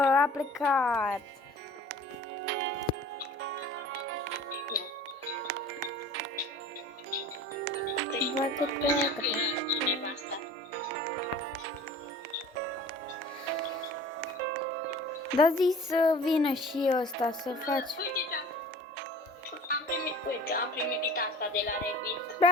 plecat. Bă, că pleacă. Cineva asta. Da, zi să vină și ăsta să faci. Uite, am primit asta de la Revit.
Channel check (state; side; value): normal; both; correlation 0.43